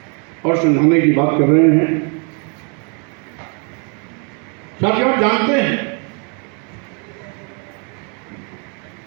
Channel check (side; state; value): left; quieter; 36.9 dB